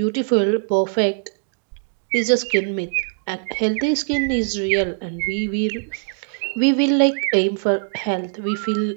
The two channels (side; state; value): left; silent; digital silence